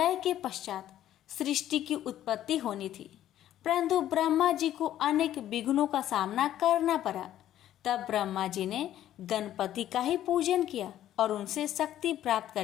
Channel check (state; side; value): quieter; right; 12.2 dB